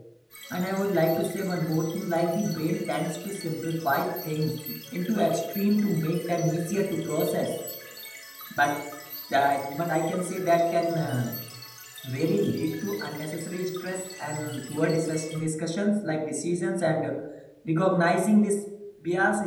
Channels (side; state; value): both; identical; correlation 1.00